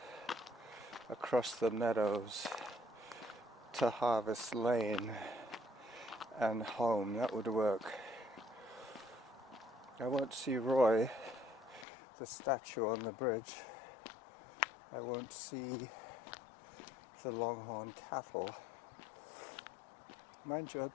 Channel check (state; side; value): drops out; right; at 11.9 s